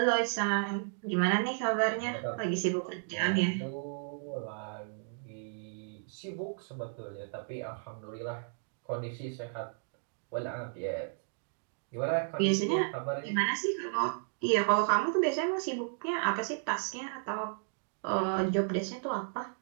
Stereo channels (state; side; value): silent; left; digital silence